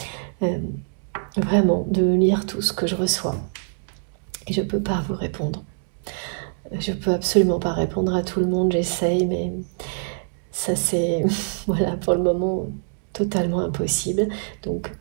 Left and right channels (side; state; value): left; silent; digital silence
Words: vraiment de lire tout ce que je reçois. Et je peux pas vous répondre. Je peux absolument pas répondre à tout le monde, j'essaye, mais ça c'est, voilà, pour le moment, totalement impossible. Donc,